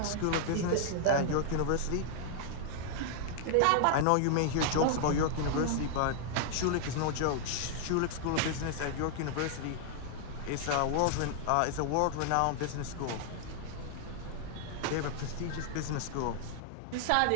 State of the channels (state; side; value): different; both; correlation 0.00